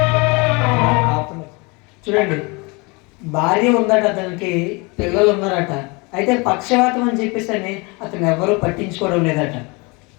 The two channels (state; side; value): quieter; right; 28.0 dB